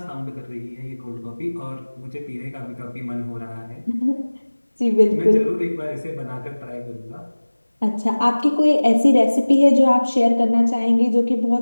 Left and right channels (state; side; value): inverted; both; correlation -1.00